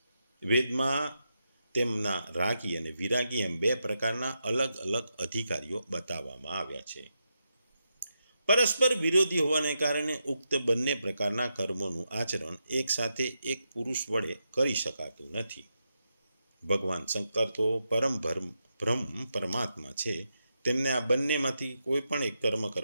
વેદમાં તેમના રાગી અને વિરાગી એમ બે પ્રકારના અલગ અલગ અધિકારીઓ બતાવવામાં આવ્યા છે. પરસ્પર વિરોધી હોવાને કારણે ઉક્ત બંને પ્રકારના કર્મોનું આચરણ એક સાથે એક પુરુષ વડે કરી શકાતું નથી. ભગવાન શંકર તો બ્રહ્મ પરમાત્મા છે, તેમને આ બંનેમાંથી કોઈ પણ એક કર્મ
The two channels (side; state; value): both; inverted; correlation -0.85